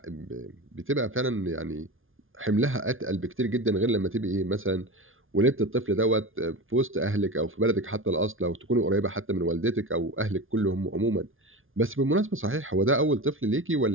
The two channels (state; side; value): late; left; 0.59 ms